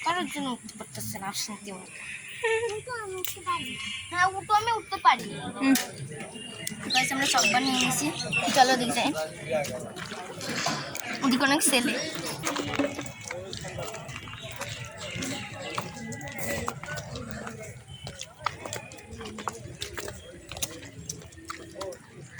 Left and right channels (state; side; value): identical; both; correlation 1.00